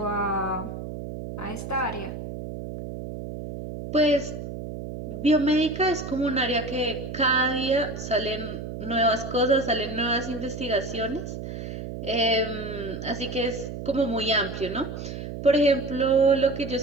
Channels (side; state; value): right; noise; hum, 8 dB below the sound